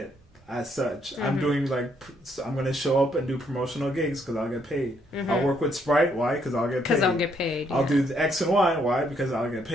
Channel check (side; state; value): both; normal; correlation 0.71